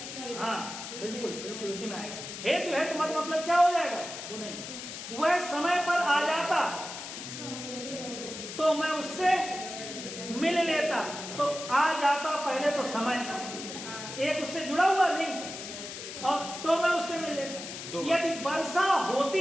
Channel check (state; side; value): noise; left; hiss, 9 dB below the sound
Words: हाँ बिल्कुल बिल्कुल उसी में आएगा। हेतु है तो मतलब क्या हो जाएगा? वो नहीं, वह समय पर आ जाता तो मैं उससे मिल लेता। तो आ जाता पहले तो समय, एक उससे जुड़ा हुआ लिंक, और तो मैं उससे मिल लेता। यदि वर्षा